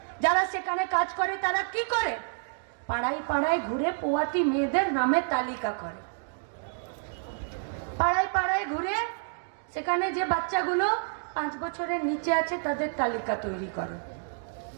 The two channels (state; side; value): silent; left; digital silence